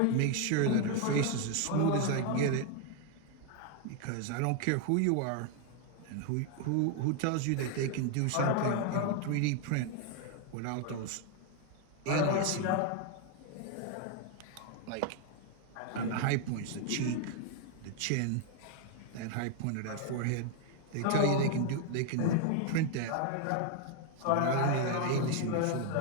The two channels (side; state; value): both; different; correlation 0.00